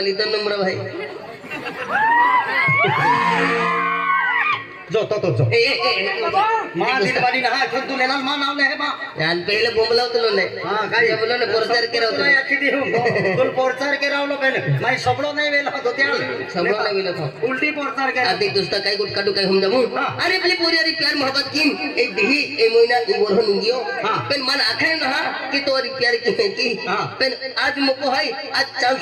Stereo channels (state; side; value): identical; both; correlation 1.00